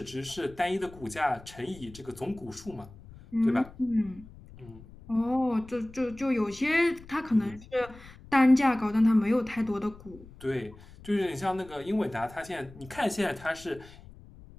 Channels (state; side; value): noise; left; rumble, 20 dB below the sound